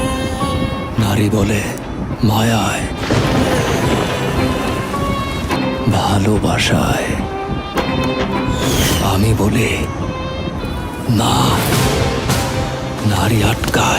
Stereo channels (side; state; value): both; identical; correlation 1.00